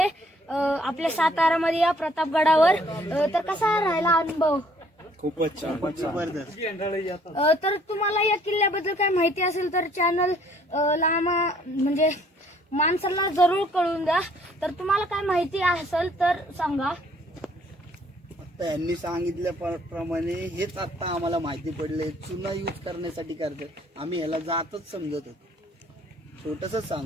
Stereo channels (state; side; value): normal; both; correlation 0.61